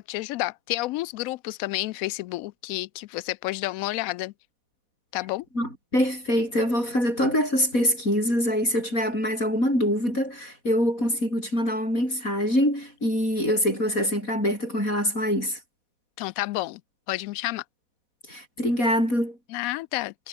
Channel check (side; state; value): right; late; 4.1 ms